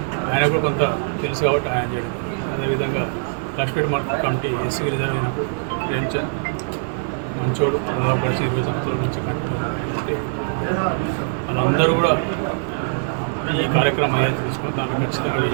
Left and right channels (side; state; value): left; silent; digital silence